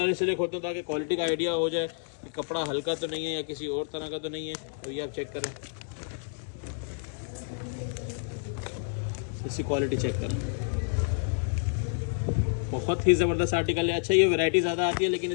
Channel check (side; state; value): right; silent; digital silence